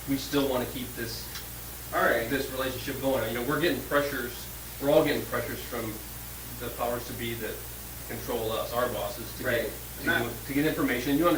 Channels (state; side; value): identical; both; correlation 1.00